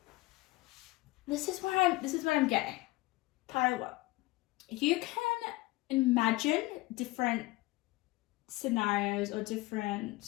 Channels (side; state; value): right; quieter; 20.6 dB